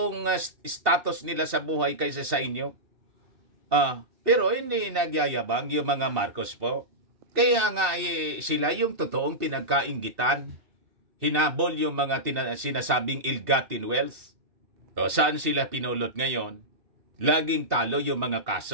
status nila sa buhay kaysa sa inyo. Pero hindi nagyayabang yung mga Marcos po. Kaya nga sila yung totoong pinagkainggitan. Hinabol yung mga sinasabing ill-gotten wealth. Saan sila pinulot ngayon? Laging talo yung mga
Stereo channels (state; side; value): late; left; 2.7 ms